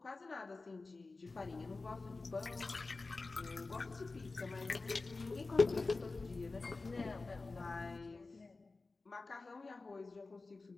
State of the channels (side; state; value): right; quieter; 3.6 dB